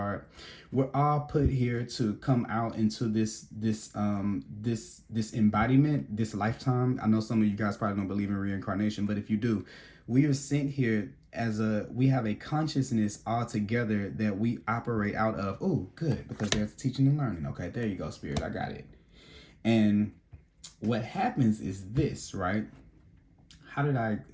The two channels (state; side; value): identical; both; correlation 1.00